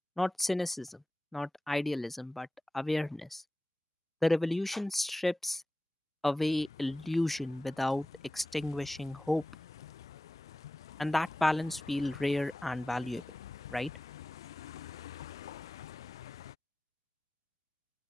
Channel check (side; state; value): both; normal; correlation 0.97